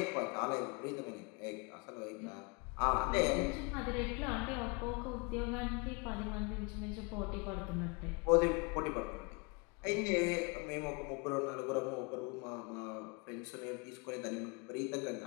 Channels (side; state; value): right; quieter; 31.0 dB